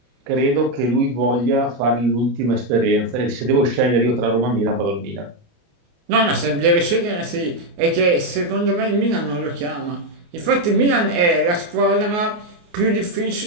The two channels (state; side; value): late; left; 29 ms